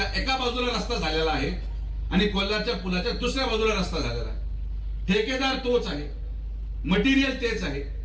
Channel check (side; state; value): both; identical; correlation 1.00